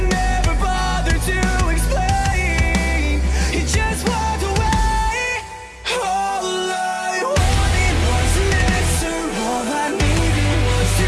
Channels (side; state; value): both; identical; correlation 1.00